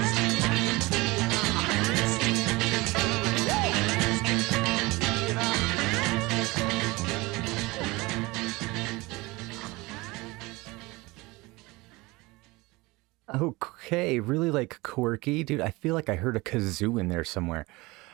Okay, really like quirky, dude. I feel like I heard a kazoo in there somewhere.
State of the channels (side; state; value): left; quieter; 22.6 dB